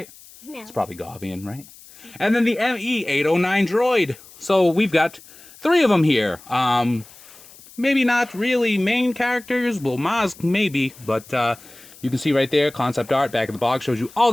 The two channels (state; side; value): noise; left; hiss, 22 dB below the sound